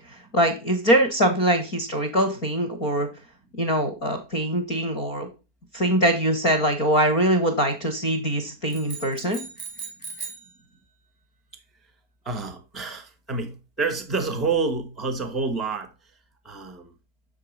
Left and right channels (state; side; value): late; right; 4.4 ms